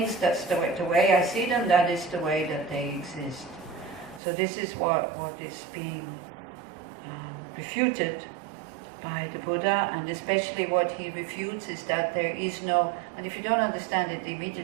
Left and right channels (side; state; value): left; drops out; at 4.2 s